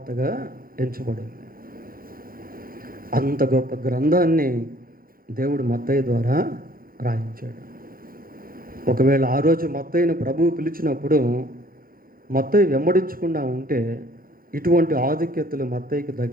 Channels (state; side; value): late; left; 0.42 ms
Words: ఎంచబడింది. అంత గొప్ప గ్రంథాన్ని దేవుడు మత్తయి ద్వారా రాయించాడు. ఒకవేళ ఆ రోజు మత్తయిని ప్రభువు పిలిచినప్పుడు మత్తయి వెంబడించకుండా ఉంటే ఇటువంటి ఆధిక్యతలు మత్తయికి